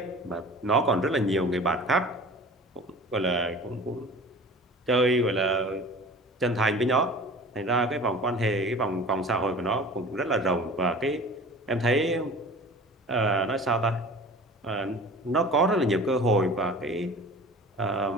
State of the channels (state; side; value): normal; both; correlation 0.42